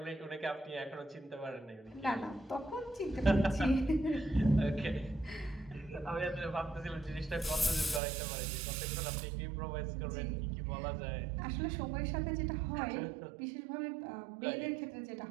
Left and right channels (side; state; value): left; drops out; at 8.0 s